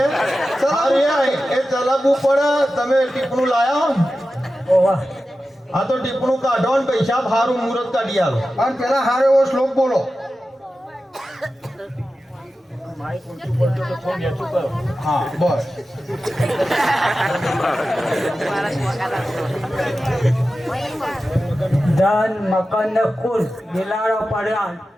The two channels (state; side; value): normal; both; correlation 0.93